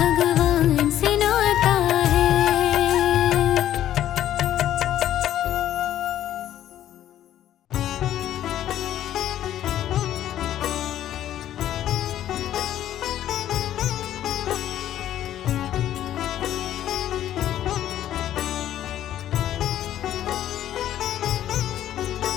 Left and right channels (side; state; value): right; quieter; 12.0 dB